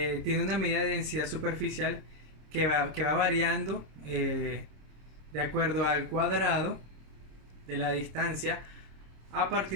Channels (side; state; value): left; late; 26 ms